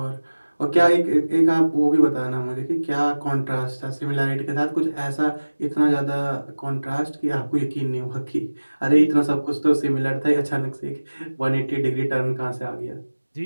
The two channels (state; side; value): inverted; both; correlation -1.00